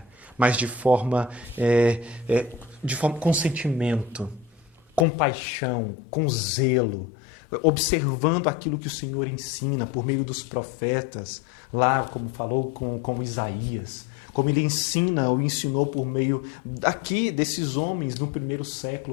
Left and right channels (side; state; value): right; drops out; at 5.1 s